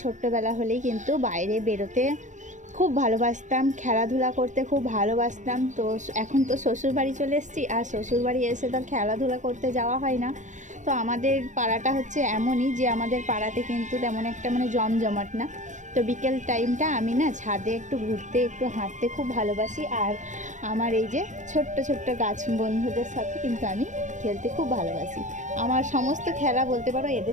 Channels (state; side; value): late; left; 0.35 ms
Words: ছোট্টবেলা হলেই কিন্তু বাইরে বেরোতে খুব ভালোবাসতাম, খেলাধুলা করতে খুব ভালোবাসতাম। তো এখন তো শ্বশুরবাড়ি চলে এসেছি, আর শ্বশুরবাড়ি এসে তো খেলাধুলা করতে যাওয়া হয় না। তো আমাদের পাড়াটা হচ্ছে এমনই যে আমাদের পাড়াতে কিন্তু তেমন একটা মানে জমজমাট না। তো বিকেল টাইমটা আমি না ছাদে একটু ঘুরতে একটু হাঁটতে খুব ভালোবাসি। আর আমার এই যে ছোট্ট ছোট্ট গাছ বন্ধুদের সাথে কিন্তু আমি খেলতে খুব ভালোবাসি। আমার সমস্ত খেলা বলতে পারো